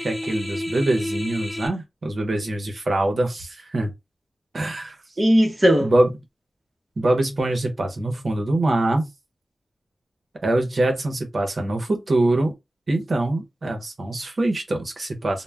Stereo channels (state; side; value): normal; both; correlation 0.96